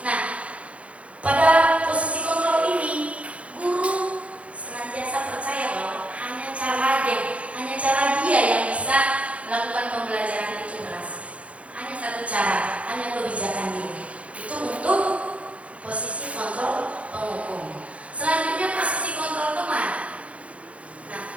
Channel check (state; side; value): late; left; 0.064 ms